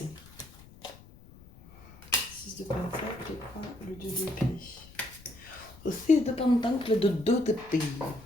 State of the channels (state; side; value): noise; left; rumble, 21 dB below the sound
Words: 6 de pentacle, le 2 d'épée. Le 6 de pentacle, le 2 d'épée.